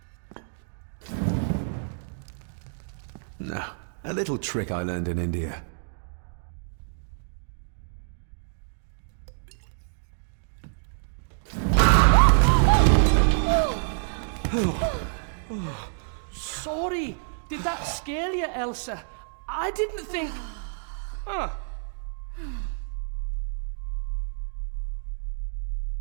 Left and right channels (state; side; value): silent; left; digital silence